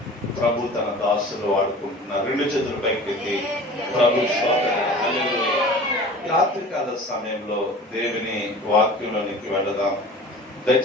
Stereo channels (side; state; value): both; normal; correlation 0.41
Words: ప్రభు తన దాసులు వాడుకుంటున్నారు. రెండు చేతుల పైకెత్తి ప్రభు రాత్రికాల సమయంలో దేవుని వాక్యంలోనికి వెళదాం.